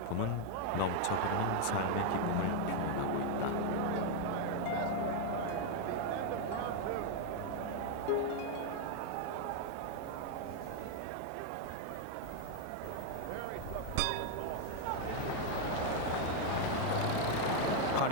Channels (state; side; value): different; both; correlation 0.00